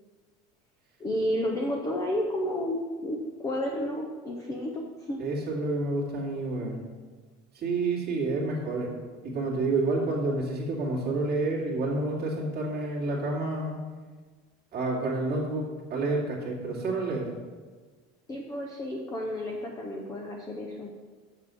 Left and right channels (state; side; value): normal; both; correlation 0.51